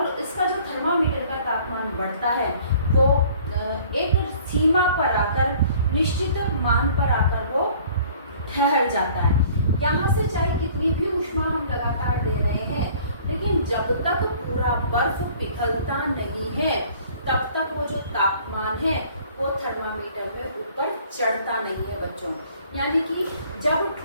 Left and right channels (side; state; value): both; inverted; correlation -0.53